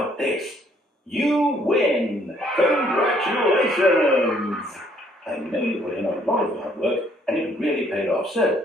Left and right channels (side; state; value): both; normal; correlation 0.65